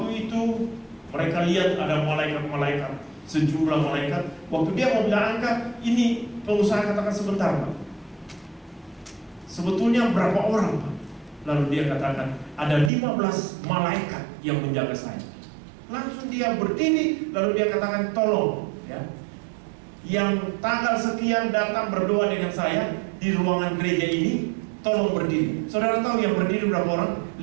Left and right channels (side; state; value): left; drops out; at 12.9 s